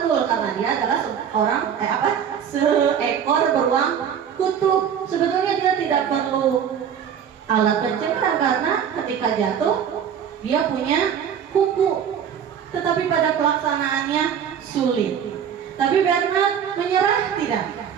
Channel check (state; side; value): quieter; left; 8.3 dB